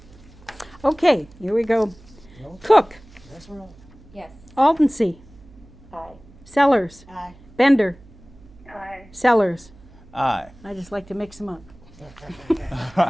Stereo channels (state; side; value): noise; right; hum, 23 dB below the sound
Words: Okay, here we go. Cook, Yes. Aldensee, Aye. Sellers, Bender, Aye. Sellers. Aye. I just like to mix them up.